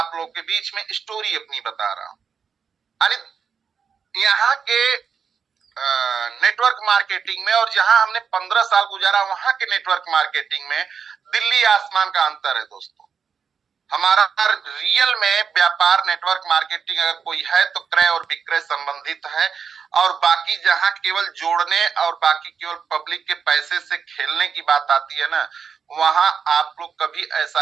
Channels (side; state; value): left; quieter; 6.4 dB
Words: लोग के बीच में स्टोरी अपनी बता रहा हूँ। यानी यहाँ के नेटवर्क मार्केटिंग में, और जहां हमने 15 साल गुजारा वहां के नेटवर्क मार्केटिंग में दिल्ली आसमान का अंतर है दोस्तों। हमारा रियल में व्यापार नेटवर्क मार्केटिंग अगर कोई है तो क्रय और विक्रय संबंधित है। और बाकी जहां केवल जोड़ने और बाकी केवल पब्लिक के पैसे से खेलने की बात आती है ना, वहां आप लोग कभी ऐसा